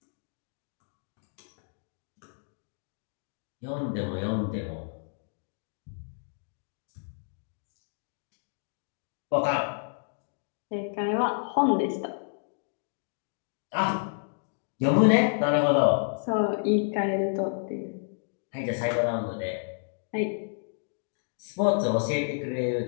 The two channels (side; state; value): right; silent; digital silence